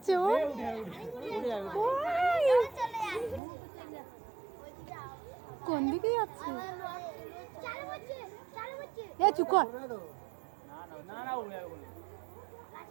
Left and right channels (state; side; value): drops out; left; at 3.4 s